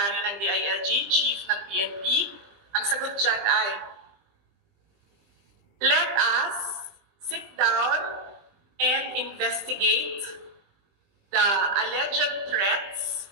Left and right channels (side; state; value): left; late; 20 ms